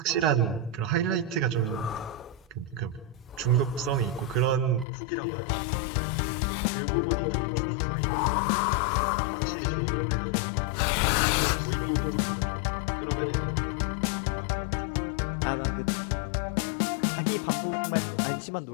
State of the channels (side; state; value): right; drops out; at 4.9 s